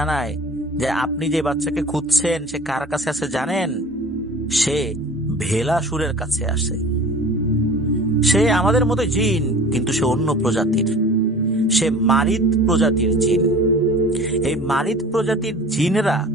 যে আপনি যে বাচ্চাকে খুঁজছেন সে কার কাছে আছে জানেন? সে ভেলাসুরের কাছে আসে। সে আমাদের মতো জিন, কিন্তু সে অন্য প্রজাতির। সে মারিদ প্রজাতির জিন। এই মারিদ প্রজাতির জিনেরা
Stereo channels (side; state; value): both; normal; correlation 0.42